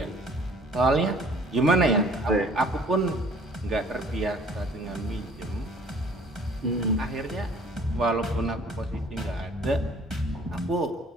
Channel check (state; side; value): normal; both; correlation 0.54